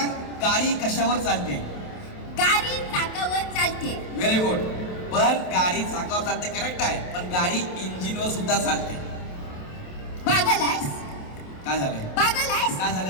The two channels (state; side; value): late; right; 27 ms